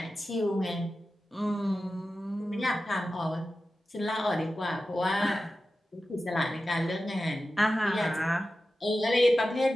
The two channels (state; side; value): normal; both; correlation 0.93